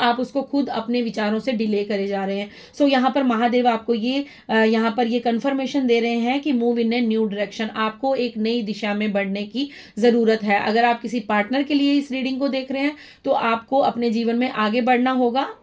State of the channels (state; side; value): identical; both; correlation 1.00